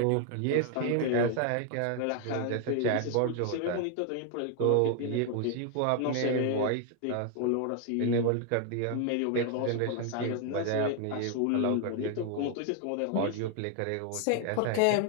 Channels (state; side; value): different; both; correlation 0.00